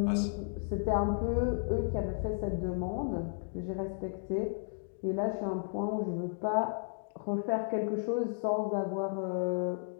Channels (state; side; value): silent; right; digital silence